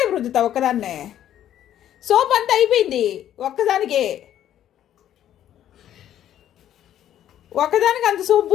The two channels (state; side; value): quieter; right; 11.3 dB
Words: రుద్దుతావు ఒక్కదాన్నే? సోప్ అంతా అయిపోయింది ఒక్కదానికే. ఒక్కదానికి అంత సోప్